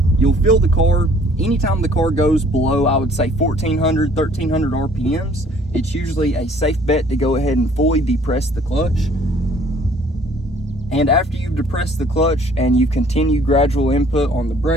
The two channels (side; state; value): both; normal; correlation 0.57